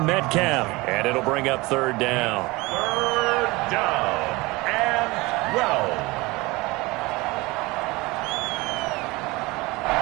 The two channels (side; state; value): left; quieter; 22.9 dB